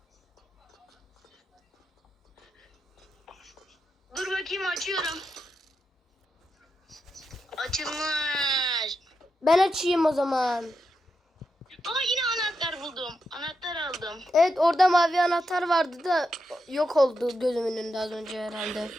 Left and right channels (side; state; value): both; normal; correlation 0.86